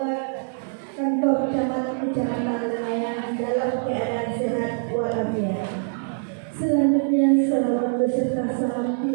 kantor Kecamatan Lengayang dalam keadaan sehat walafiat. Selanjutnya, salawat beserta salam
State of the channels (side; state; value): left; silent; digital silence